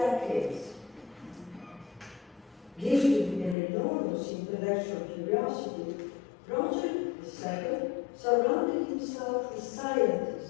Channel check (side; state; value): right; drops out; at 3.6 s